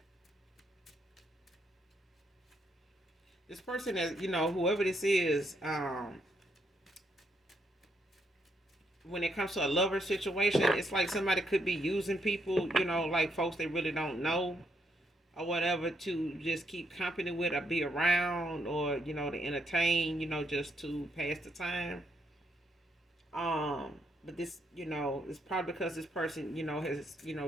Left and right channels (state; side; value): normal; both; correlation 0.76